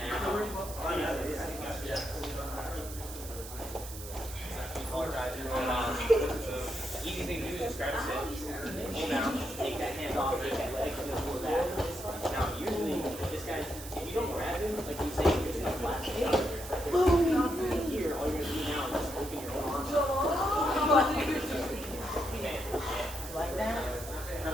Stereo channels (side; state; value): right; noise; hiss, 12 dB below the sound